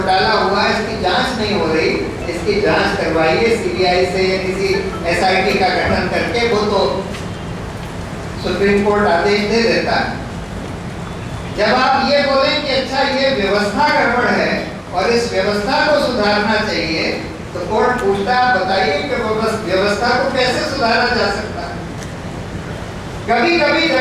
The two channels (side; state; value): both; identical; correlation 1.00